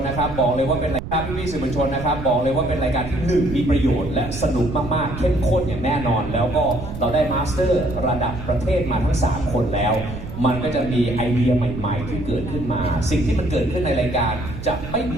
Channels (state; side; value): noise; right; rumble, 9 dB below the sound